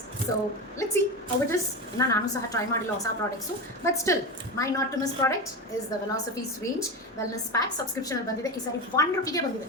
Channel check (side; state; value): both; normal; correlation 0.20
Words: So let's see how it is. ನಾನು ಸಹ ಟ್ರೈ ಮಾಡಿಲ್ಲ ಹೊಸ products, but still my not to miss product is the velocities range wellness pack. ಸಬ್ಸ್ಕ್ರಿಪ್ಷನಲ್ಲಿ ಬಂದಿದೆ, ಈ ಸಾರಿ 1 ರೂಪಿಗೆ